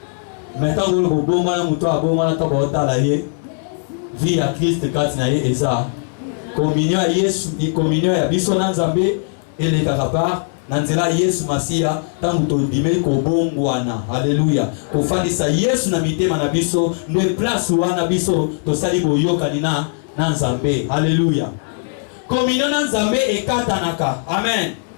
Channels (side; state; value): right; silent; 67 dB below the other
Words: Maintenant vous le bongwana muto abongwana to botala ye. Vie à Christ katina ye eza. Communion à Yesu, communion à biso na Nzambe et les kakapar nanzela Yesu Masia tangu tondime ko bongwana. Alléluia. Ko fandisa Yesu na mitema na biso ne place wana biso to sali boyoka nina na Nzambe. Alléluia. Communion na Nzambe ekatanaka. Amen.